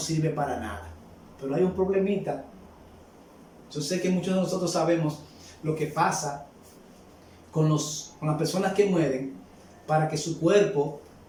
para nada. Pero hay un problemita. Yo sé que muchos de nosotros sabemos lo que pasa con las personas que mueren para que su cuerpo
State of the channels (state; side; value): identical; both; correlation 1.00